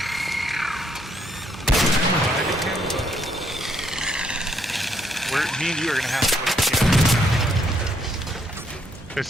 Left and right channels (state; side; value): normal; both; correlation 0.72